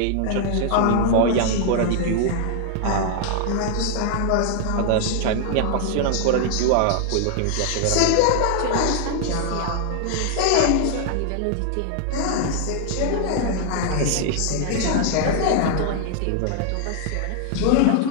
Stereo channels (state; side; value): different; both; correlation 0.00